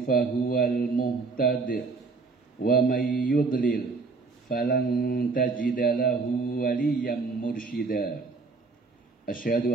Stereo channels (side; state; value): left; quieter; 4.2 dB